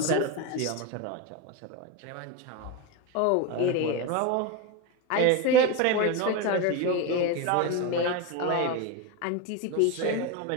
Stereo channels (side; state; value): both; different; correlation 0.04